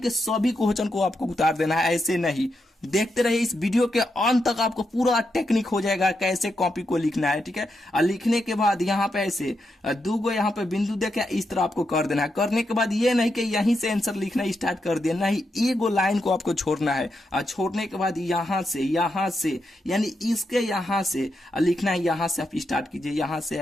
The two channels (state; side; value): normal; both; correlation 0.84